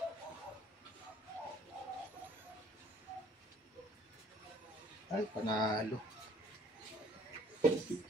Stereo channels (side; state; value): both; normal; correlation 0.57